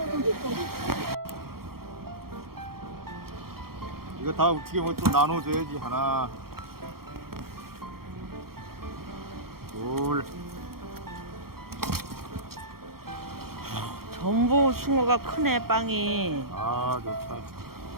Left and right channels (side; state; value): left; late; 0.94 ms